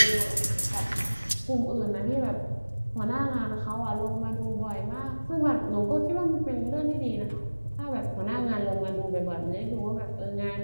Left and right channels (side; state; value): both; inverted; correlation -1.00